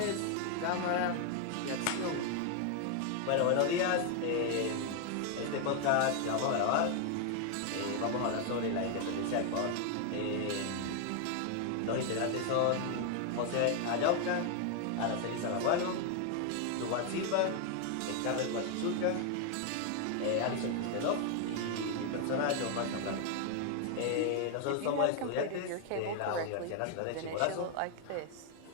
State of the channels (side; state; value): both; different; correlation 0.01